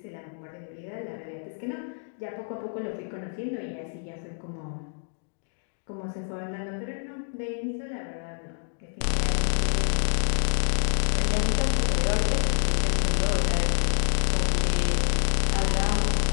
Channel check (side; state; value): right; silent; digital silence